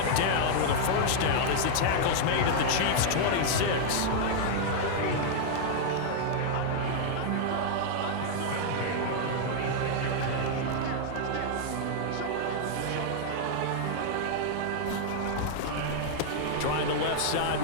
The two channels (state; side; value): different; both; correlation -0.01